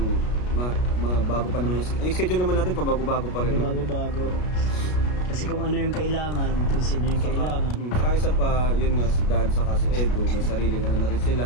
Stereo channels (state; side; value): late; right; 33 ms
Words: bago pa naman yung schedule naman natin, pabago-bago pa rin. Pabago-bago. Kasi kung ano yung kailangan, kung sino yung kailangan. Saka isa pa, yun nga, si Dan saka si Edu, may sariling na rin